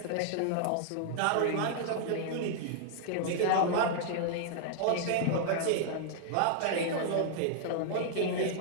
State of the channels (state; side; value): different; both; correlation -0.01